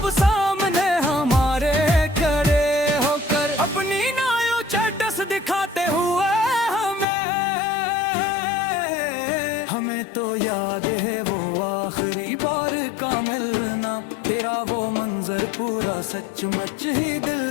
सामने हमारे खड़े होकर अपनी नायो चैटस दिखाते हुए हमें तो याद है वो आखिरी बार का मिलना, तेरा वो मंजर पूरा सचमुच ही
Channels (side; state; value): right; drops out; at 7.1 s